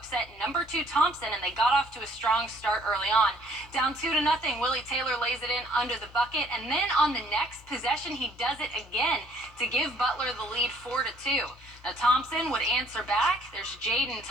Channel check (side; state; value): both; normal; correlation 0.61